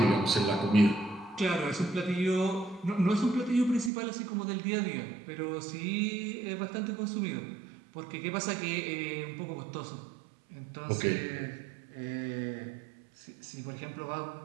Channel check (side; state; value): left; drops out; at 3.9 s